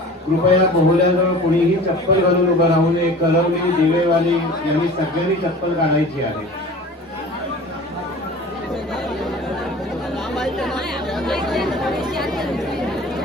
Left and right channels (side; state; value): both; normal; correlation 0.41